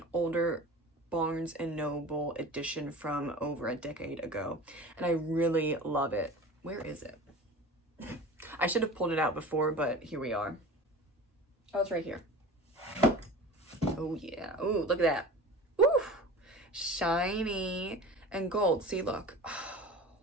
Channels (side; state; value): both; normal; correlation 0.36